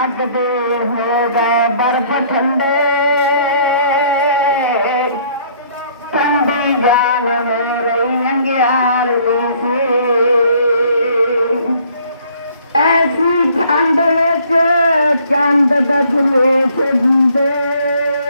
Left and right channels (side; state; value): both; inverted; correlation -0.60